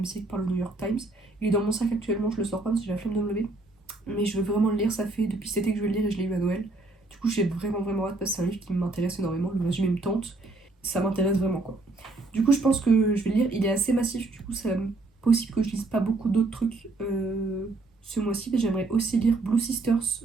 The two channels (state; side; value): quieter; left; 3.1 dB